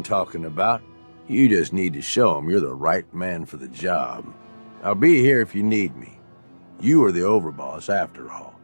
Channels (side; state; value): both; inverted; correlation -1.00